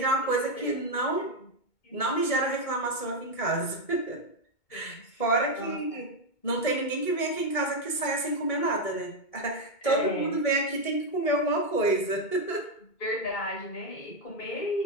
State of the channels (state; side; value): late; right; 2.2 ms